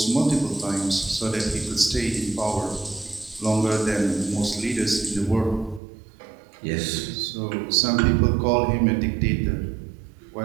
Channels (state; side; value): drops out; left; at 5.8 s